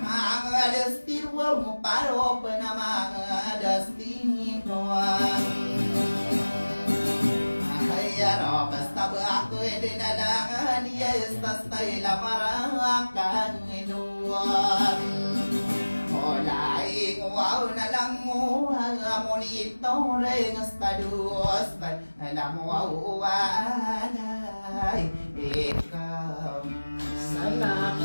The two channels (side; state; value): both; inverted; correlation -1.00